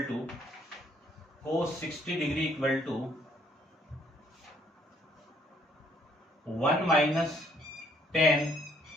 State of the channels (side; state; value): both; normal; correlation 0.66